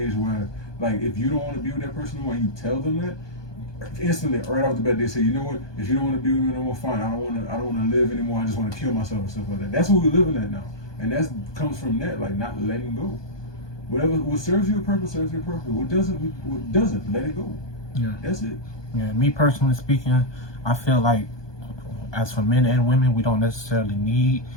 where like if you don't want to be with that person anymore and you tell them that, instantly right off the bat they say, you know what, if you don't want to be with me no more, fine, I don't want to live anymore, I just want to kill myself and stuff like that. That's what we're living at now, and that comes from that, like not letting go. What serves you a purpose serves you a purpose. What doesn't, let it go. Yeah, that's it. Yeah, me personally speaking, I feel like as for men and women, we don't necessarily need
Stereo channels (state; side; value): late; right; 1.2 ms